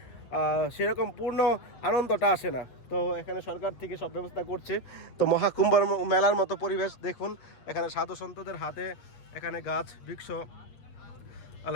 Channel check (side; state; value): right; late; 8.8 ms